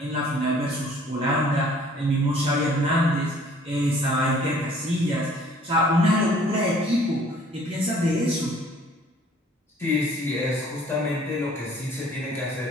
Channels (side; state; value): both; normal; correlation 0.56